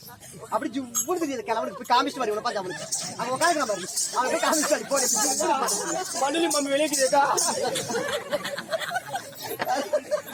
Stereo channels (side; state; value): both; identical; correlation 1.00